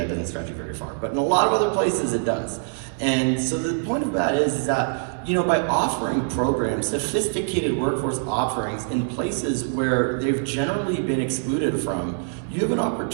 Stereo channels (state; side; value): silent; left; 63 dB below the other